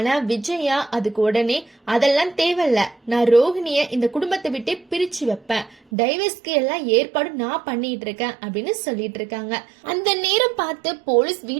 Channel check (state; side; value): drops out; left; at 5.8 s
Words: விஜயா அதுக்கு உடனே அதெல்லாம் தேவையில்ல, நான் ரோகிணிய இந்த குடும்பத்தை விட்டே பிரிச்சு வைப்பேன், டைவர்ஸ்க்கு எல்லாம் ஏற்பாடு நான் பண்ணிட்டு இருக்கேன் அப்படின்னு சொல்லிட்டு இருக்காங்க. அந்த நேரம் பார்த்து போலீஸ்